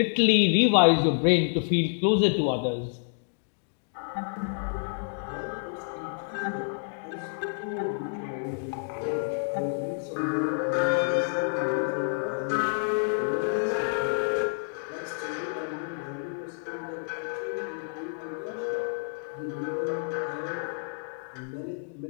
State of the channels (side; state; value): right; silent; digital silence